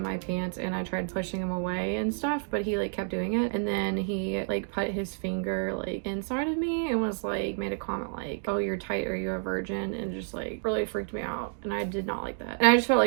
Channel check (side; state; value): left; silent; 58 dB below the other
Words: my pants, and I tried pushing him away and stuff, but he like kept doing it. And then he like put his finger like inside of me and was like, made a comment like, oh, you're tight, are you a virgin? And just like really freaked me out, and I did not like that. And I just felt